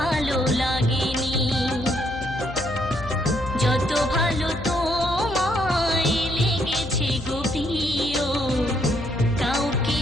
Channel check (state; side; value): noise; left; hum, 11 dB below the sound